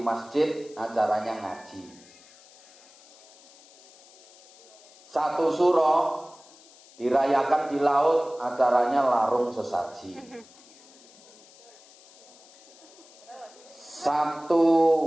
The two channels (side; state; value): left; noise; hiss, 24 dB below the sound